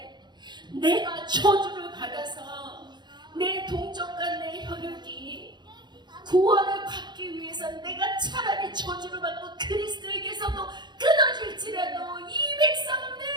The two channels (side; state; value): left; late; 0.21 ms